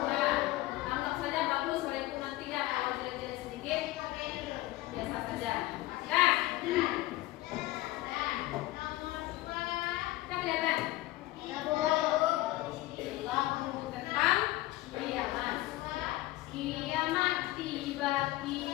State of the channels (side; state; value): right; quieter; 17.7 dB